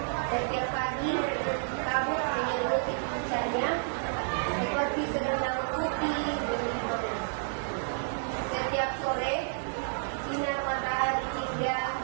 Setiap pagi kabut menyelimuti puncaknya seperti selendang putih berlindung. Setiap sore sinar matahari hingga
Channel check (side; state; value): left; silent; digital silence